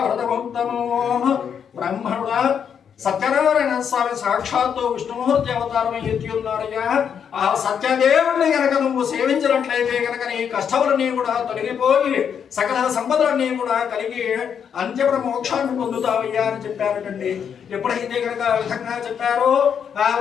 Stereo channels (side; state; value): right; quieter; 7.7 dB